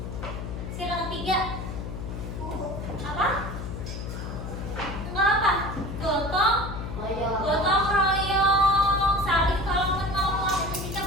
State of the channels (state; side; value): noise; left; hum, 7 dB below the sound